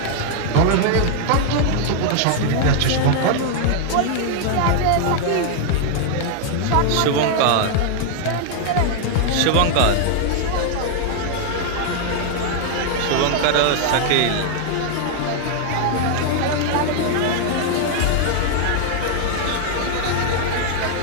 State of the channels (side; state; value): both; different; correlation 0.00